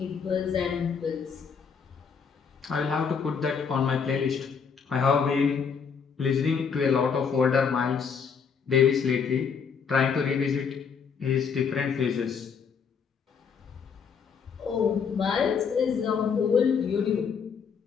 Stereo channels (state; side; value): quieter; right; 6.2 dB